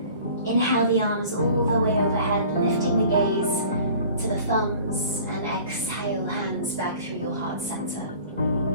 inhale the arms all the way overhead, lifting the gaze to the thumbs, and exhale hands back through your heart center.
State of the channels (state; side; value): inverted; both; correlation -0.47